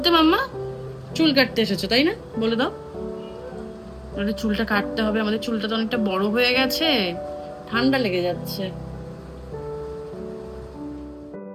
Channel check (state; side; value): identical; both; correlation 1.00